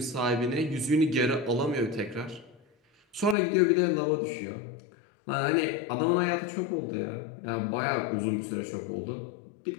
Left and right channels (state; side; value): drops out; right; at 3.4 s